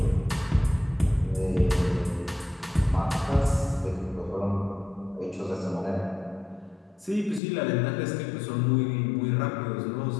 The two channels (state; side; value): drops out; right; at 7.4 s